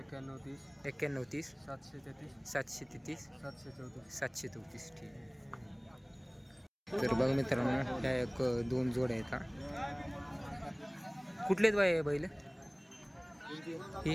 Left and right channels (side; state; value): both; identical; correlation 1.00